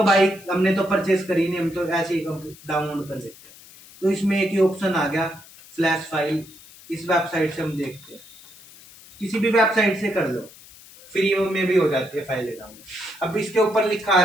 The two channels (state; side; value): noise; left; hiss, 21 dB below the sound